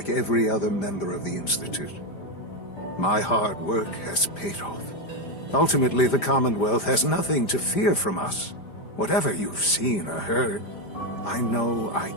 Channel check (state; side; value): late; right; 5.0 ms